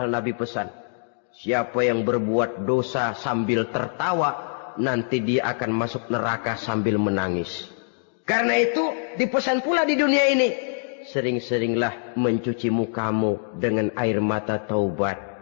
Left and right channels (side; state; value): right; silent; digital silence